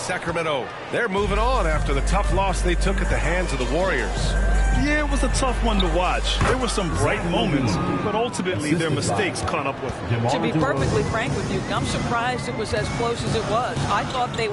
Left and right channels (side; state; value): both; identical; correlation 1.00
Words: They're moving on after the tough loss they took at the hands of the Warriors. Yeah, it was a tough one to watch. There were some bright moments, but ultimately their mistakes caught up with them. To be perfectly frank with you, I'm surprised it was as close as it was. I thought they